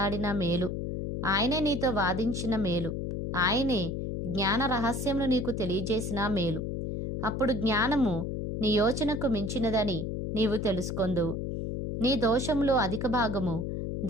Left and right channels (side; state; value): left; noise; hum, 3 dB below the sound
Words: మేలు, ఆయనే నీతో వాదించిన మేలు, ఆయనే జ్ఞాన రహస్యమును నీకు తెలియజేసిన మేలు. అప్పుడు జ్ఞానము నీ యోచనకు మించినదని నీవు తెలుసుకొందువు. నీ దోషములో అధిక భాగము